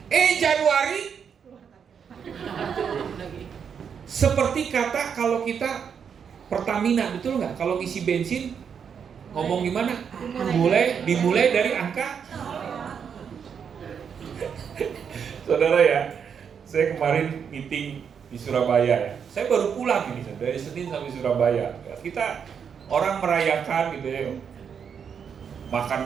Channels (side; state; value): left; quieter; 7.2 dB